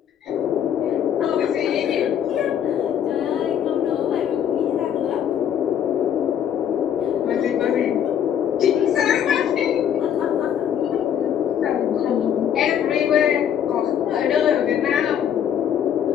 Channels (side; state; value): right; quieter; 9.2 dB